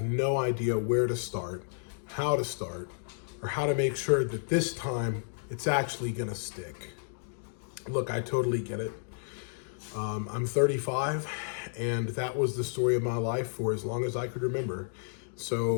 no idea where to start, how to start, or how to make sure that this time it's actually gonna stick. Look, I totally get it. I'm 35, and that was the story of my life for as long as I could remember.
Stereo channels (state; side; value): silent; right; digital silence